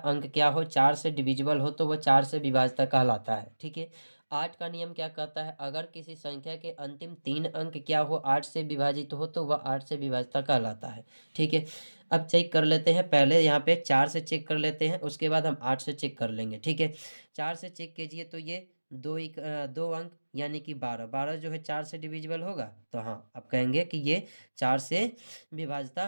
अंक क्या हो, 4 से डिविजिबल हो, तो वह 4 से विभाज्यता कहलाता है। ठीक है, 8 का नियम क्या कहता है, अगर किसी संख्या के अंतिम 3 अंक क्या हो, 8 से विभाजित हो, तो वह 8 से विभाज्यता कहलाता है। ठीक है, अब चेक कर लेते हैं, पहले यहाँ पे 4 से चेक कर लेते हैं, उसके बाद हम 8 से चेक कर लेंगे। ठीक है, 4 से चेक कीजिए तो ये 2 अंक यानी कि 12, 12 जो है 4 से डिविजिबल होगा, तो हाँ आप कहेंगे कि ये 4 से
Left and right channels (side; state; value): both; inverted; correlation -1.00